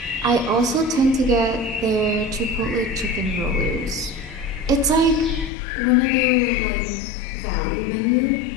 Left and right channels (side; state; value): right; drops out; at 5.5 s